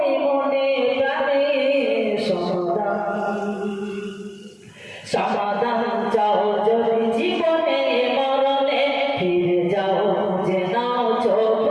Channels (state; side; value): identical; both; correlation 1.00